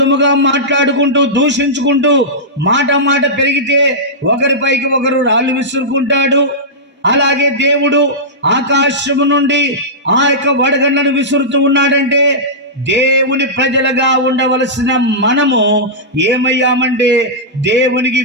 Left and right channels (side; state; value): both; normal; correlation -0.13